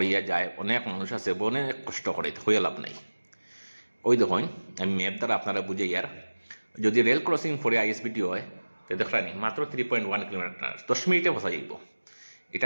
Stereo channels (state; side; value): inverted; both; correlation -1.00